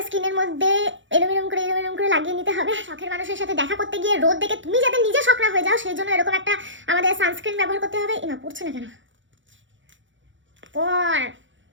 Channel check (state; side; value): late; left; 0.55 ms